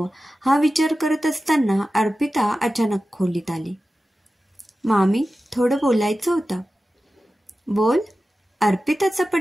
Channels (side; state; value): both; normal; correlation 0.94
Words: हा विचार करत असताना अर्पिता अचानक खोलीत आली. मामी, थोडं बोलायचं होतं. बोल. अर्पिताचा